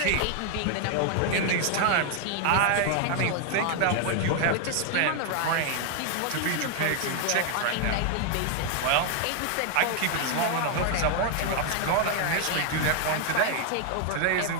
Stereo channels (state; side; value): different; both; correlation 0.00